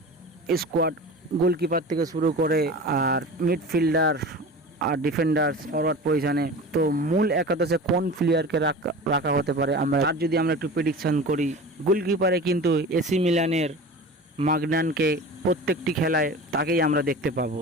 স্কোয়াড, গোলকিপার থেকে শুরু করে আর মিডফিল্ডার আর ডিফেন্ডার ফরওয়ার্ড পজিশনে। তো মূল একাদশে কোন প্লেয়ারকে রাখা হতে পারে তার যদি আমরা একটু প্রেডিকশন করি, গোলকিপারে কিন্তু এসি মিলানের মাগনানকে প্রত্যেকটি খেলায় তাকেই আমরা দেখতে পাবো।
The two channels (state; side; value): normal; both; correlation 0.35